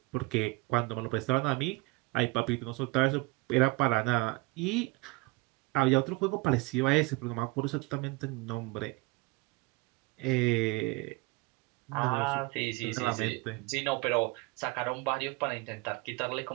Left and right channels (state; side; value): quieter; left; 24.6 dB